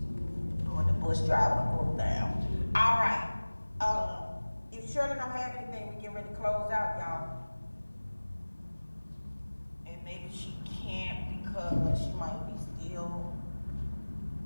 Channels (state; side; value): inverted; both; correlation -1.00